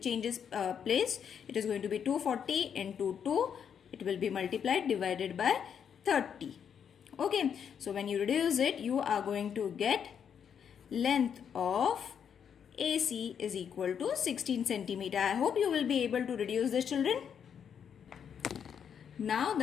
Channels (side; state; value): right; quieter; 7.8 dB